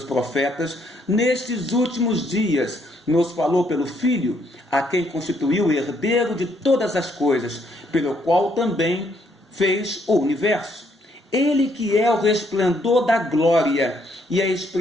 profetas, nestes últimos dias nos falou pelo Filho, a quem constituiu herdeiro de todas as coisas, pelo qual também fez o universo. Ele que é o resplendor da glória e a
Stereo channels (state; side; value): normal; both; correlation 0.71